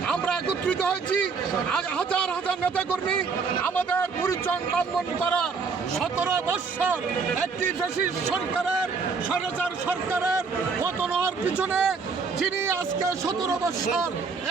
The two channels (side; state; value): left; quieter; 5.0 dB